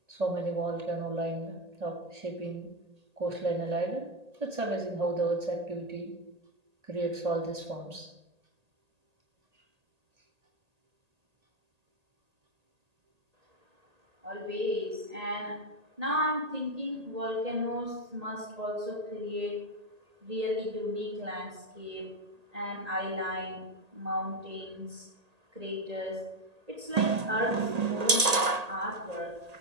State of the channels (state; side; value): late; left; 1.8 ms